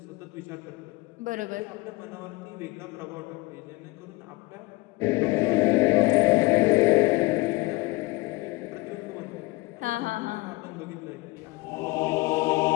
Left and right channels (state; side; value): quieter; right; 22.7 dB